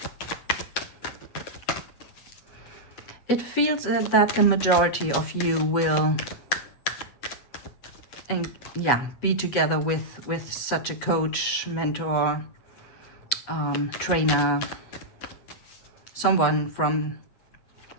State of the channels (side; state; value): right; late; 8.2 ms